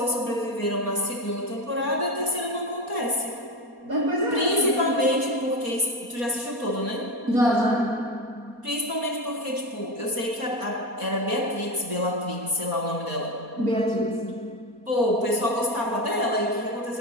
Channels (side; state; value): left; late; 4.2 ms